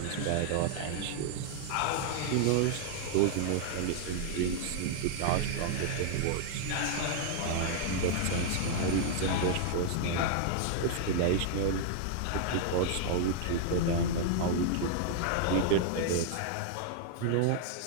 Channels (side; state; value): both; different; correlation -0.01